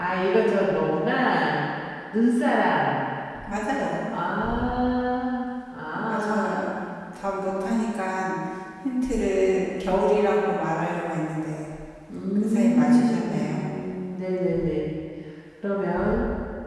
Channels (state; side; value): identical; both; correlation 1.00